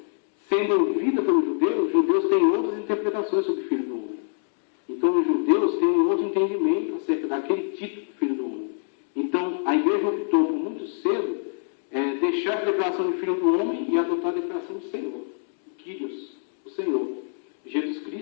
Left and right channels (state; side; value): silent; right; digital silence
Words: sendo ouvida pelos judeus, os judeus têm outras interpretações sobre o Filho do Homem. Então, os judeus têm um outro entendimento acerca daquele título Filho do Homem. Então, a igreja optou por muito cedo deixar a declaração de Filho do Homem e adotar a declaração de Senhor. Kyrios, o Senhor. Jesus